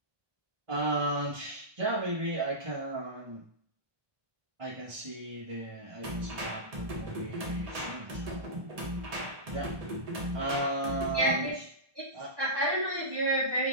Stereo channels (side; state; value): left; late; 1.2 ms